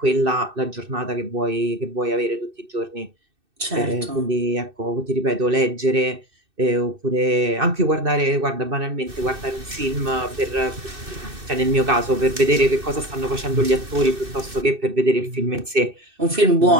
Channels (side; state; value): left; late; 2.6 ms